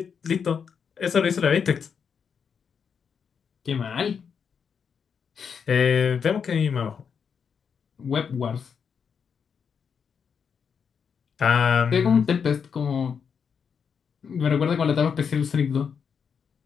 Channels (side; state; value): right; quieter; 6.7 dB